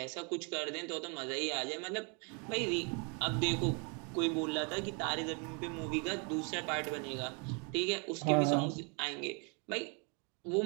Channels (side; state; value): left; quieter; 34.7 dB